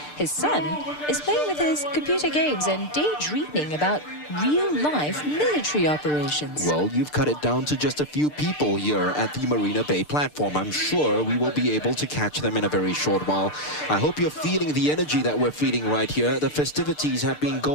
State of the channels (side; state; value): right; late; 6.7 ms